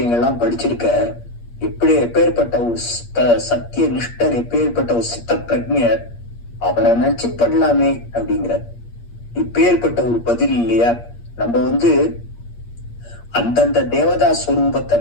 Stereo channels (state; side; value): late; right; 8.5 ms